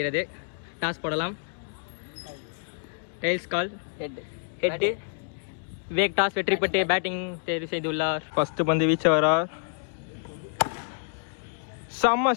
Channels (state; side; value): silent; right; digital silence